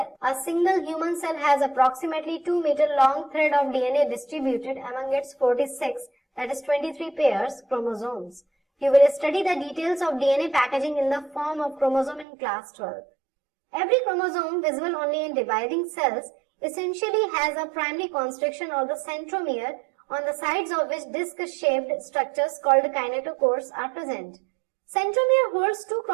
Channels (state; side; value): drops out; left; at 12.2 s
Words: has approximately 2 meter long thread of DNA distributed among its 46, that is 23 pairs chromosomes. You will study the details of DNA packaging in the form of chromosome in class 12. Every chromosome, visible only in dividing cells, essentially has a primary constriction or the centromere, on the sides of which disc-shaped structures called kinetochores are present. Centromere holds two